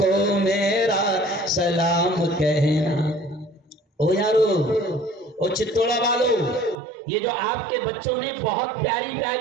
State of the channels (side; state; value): left; drops out; at 6.8 s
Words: میرا سلام کہنا۔ او یارو، او چتوڑا والو، یہ جو آپ کے بچوں نے بہت پیاری